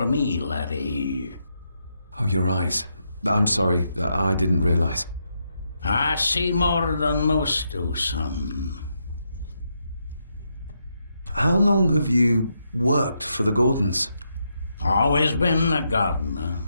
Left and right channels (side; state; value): both; inverted; correlation -0.81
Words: me, laddie. Oh, your eyes. I'm sorry, I didn't realize. I see more than most do, son. How long have you worked for the Gordons? Always been a gardener,